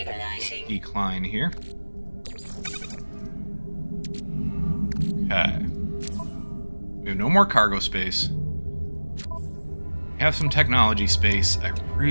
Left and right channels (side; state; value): both; inverted; correlation -1.00